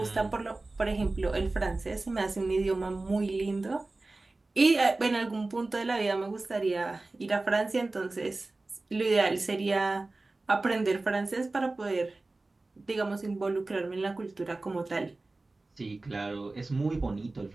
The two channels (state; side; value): quieter; left; 3.2 dB